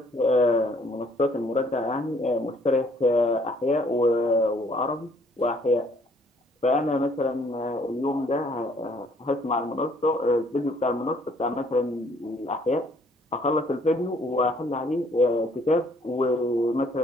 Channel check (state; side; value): normal; both; correlation 0.62